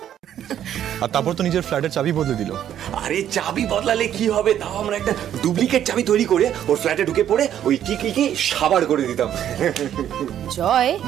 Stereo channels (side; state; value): left; quieter; 10.5 dB